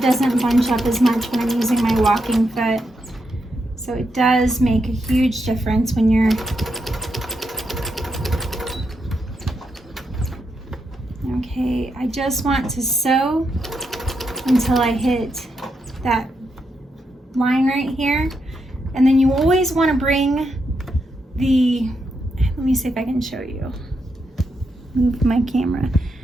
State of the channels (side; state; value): both; normal; correlation 0.83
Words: doesn't bunch up as much when I'm using my walking foot. So it does make a huge difference when you're okay. I just want to sew until I hit that line right here, and then you always want to bring the, let me see if I can show you, move my camera,